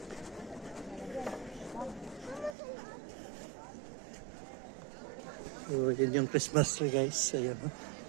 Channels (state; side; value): drops out; left; at 2.6 s